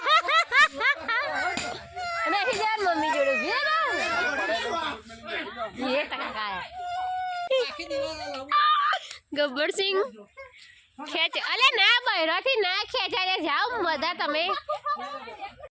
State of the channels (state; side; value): identical; both; correlation 1.00